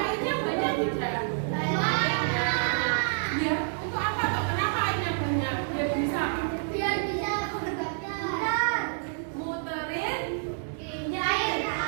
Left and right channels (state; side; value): silent; left; digital silence